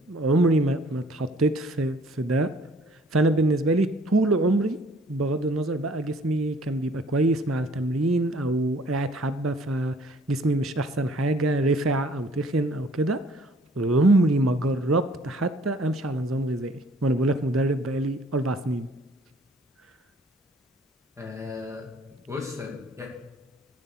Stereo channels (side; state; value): both; normal; correlation 0.57